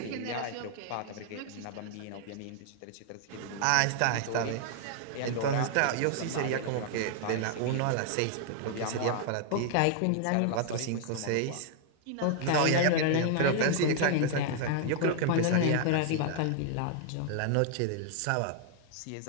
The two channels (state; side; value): different; both; correlation 0.00